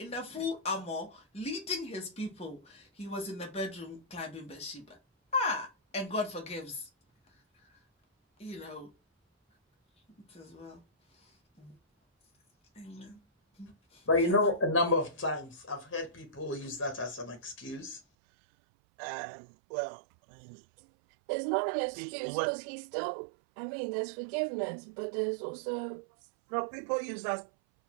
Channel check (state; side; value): drops out; left; at 18.0 s